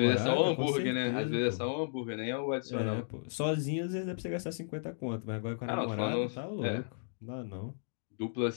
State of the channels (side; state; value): right; silent; digital silence